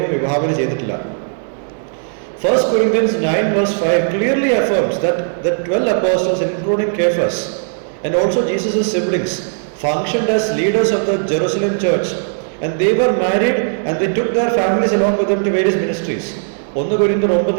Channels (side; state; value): left; silent; digital silence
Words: വിഭാവന ചെയ്തിട്ടില്ല. 1 Corinthians 9:5 clearly affirms that the 12 apostles, including Cephas and also Jesus' siblings, functioned as leaders of the Jerusalem church, and they were married and they took their families along with them to various ministries. 1 Corinthians